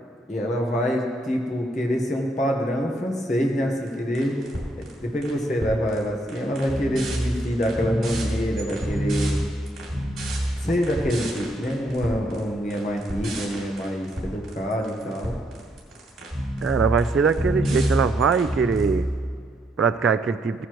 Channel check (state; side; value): normal; both; correlation 0.74